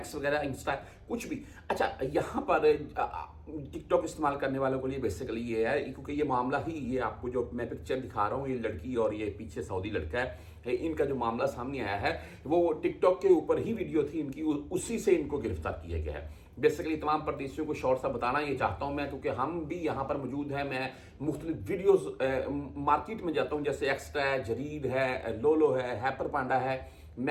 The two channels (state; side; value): identical; both; correlation 1.00